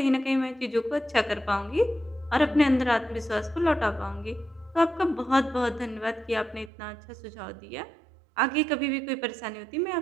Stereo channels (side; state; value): left; drops out; at 6.7 s